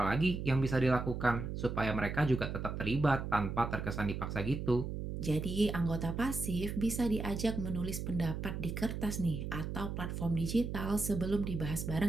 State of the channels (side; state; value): right; noise; hum, 4 dB below the sound